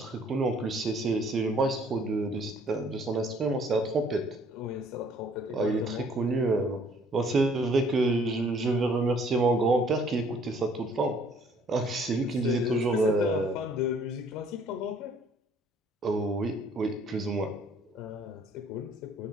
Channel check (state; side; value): normal; both; correlation 0.60